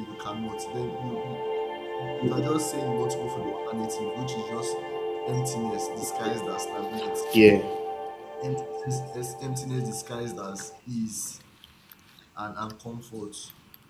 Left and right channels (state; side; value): identical; both; correlation 1.00